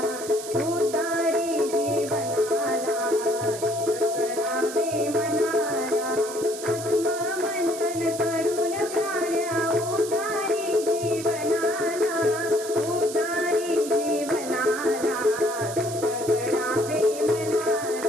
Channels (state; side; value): noise; right; hiss, 11 dB below the sound